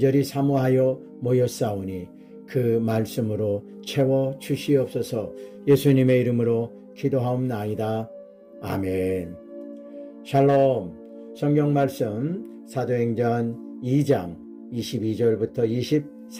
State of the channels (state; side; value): identical; both; correlation 1.00